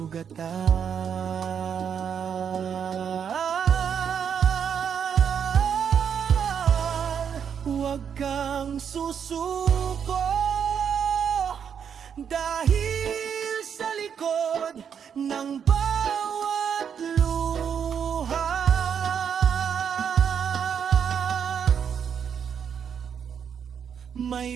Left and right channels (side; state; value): left; quieter; 7.6 dB